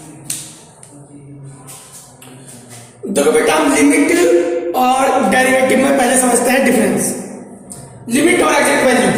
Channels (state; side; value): identical; both; correlation 1.00